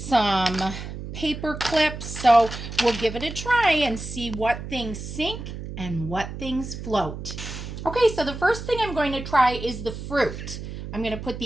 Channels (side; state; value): right; noise; hum, 9 dB below the sound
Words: paper clips. So we'll give it a try and see what things sink and what things float. Okay, so the first thing I'm going to try is the fruit. I'm going to put